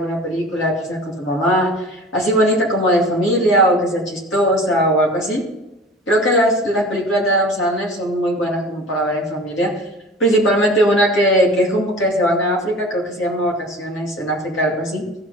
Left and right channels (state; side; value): normal; both; correlation 0.41